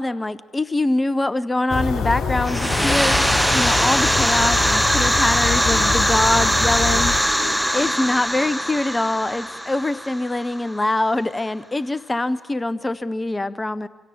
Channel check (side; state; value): both; normal; correlation 0.95